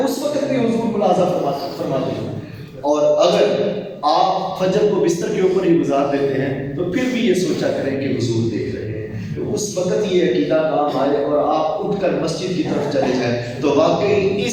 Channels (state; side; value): identical; both; correlation 1.00